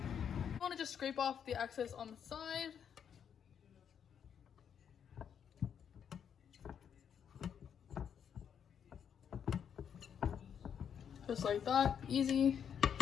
You want to just scrape off the excess on the side. Just like that, easy.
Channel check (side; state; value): right; quieter; 8.1 dB